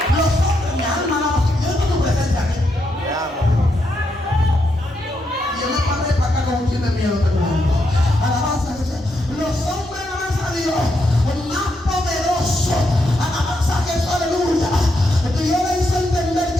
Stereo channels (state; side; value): normal; both; correlation 0.81